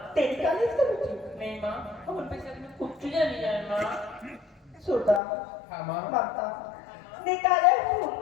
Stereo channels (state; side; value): drops out; right; at 5.2 s